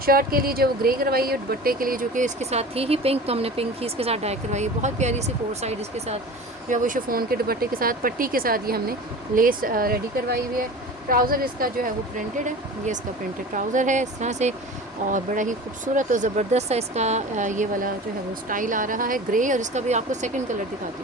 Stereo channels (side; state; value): both; normal; correlation 0.37